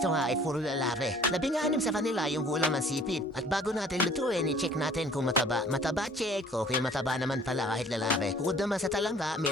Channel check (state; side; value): normal; both; correlation 0.53